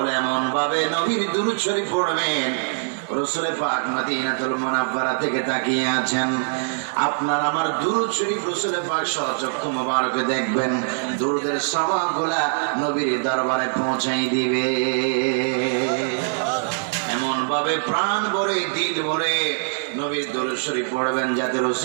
এমন ভাবে নবীর দরুদ শরীফ পড়বেন, রসুলে পাক মদিনাতুল মুনাওয়ারা থেকে তাকিয়ে আছেন, আপনার আমার দুরূদ শরীফ রসুলে পাক সচক্ষু মোবারকে দেখবেন, দুরূদের সওয়াবগুলা নবীর দরবারে পৌঁছাই দিবে। এমন ভাবে প্রাণ ভরে দিল ভরে নবীর দরুদ শরীফ পড়বেন যাতে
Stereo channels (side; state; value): left; silent; digital silence